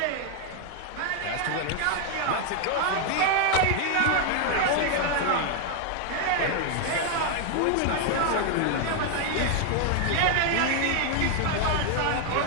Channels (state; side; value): different; both; correlation 0.00